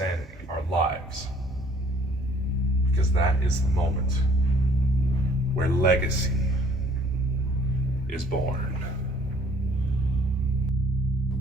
our lives. Because that is the moment where legacy is born.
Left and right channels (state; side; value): normal; both; correlation 0.57